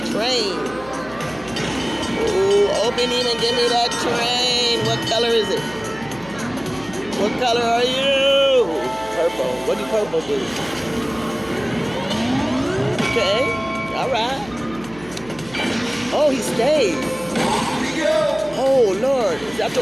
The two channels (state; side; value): noise; right; hum, 20 dB below the sound